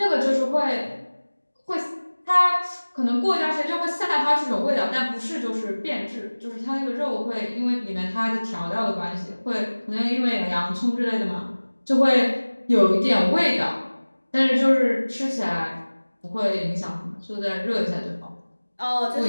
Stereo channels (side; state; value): both; inverted; correlation -1.00